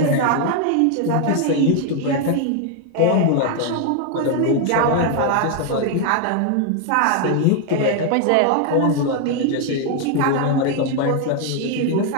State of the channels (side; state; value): both; different; correlation 0.00